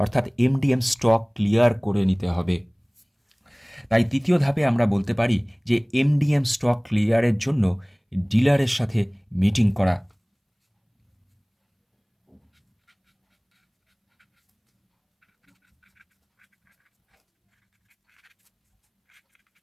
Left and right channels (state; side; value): identical; both; correlation 1.00